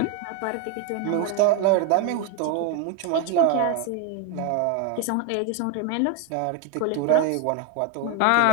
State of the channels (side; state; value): both; different; correlation 0.01